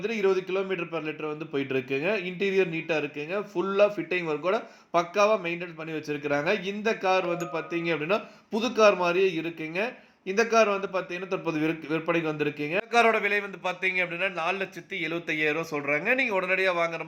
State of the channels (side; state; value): both; identical; correlation 1.00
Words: 20 கிலோமீட்டர் பெர் லிட்டர் வந்து போயிட்டு இருக்குங்க. இன்டீரியர் நீட்டாக இருக்குங்க. ஃபுல்லாக ஃபிட்டிங் ஒர்க்கோட பக்காவாக மெயின்டைன் பண்ணி வச்சிருக்கிறாங்க. இந்த கார் வந்து பார்த்தீங்க அப்படின்னா புது கார் மாதிரியே இருக்குங்க. இந்த கார் வந்து பார்த்தீங்கன்னா தற்போது விற்பனைக்கு வந்திருக்குங்க. இந்த காரோட விலை வந்து பார்த்தீங்க அப்படின்னா 4,75,000 சொல்கிறாங்க. நீங்கள் உடனடியாக வாங்குற